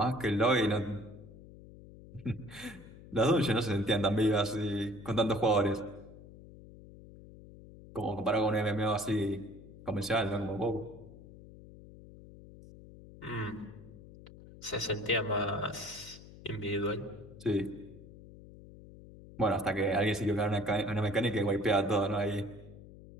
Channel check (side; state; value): left; noise; hum, 18 dB below the sound